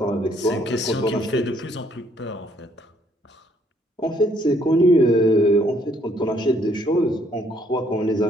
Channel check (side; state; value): both; normal; correlation 0.67